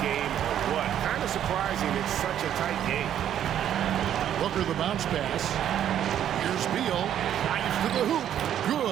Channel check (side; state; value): left; quieter; 10.4 dB